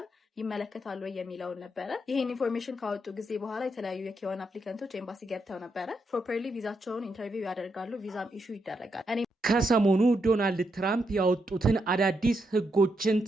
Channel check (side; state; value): both; normal; correlation 0.81